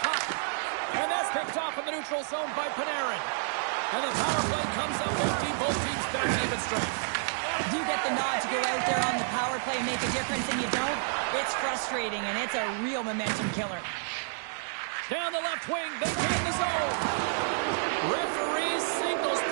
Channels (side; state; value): left; silent; digital silence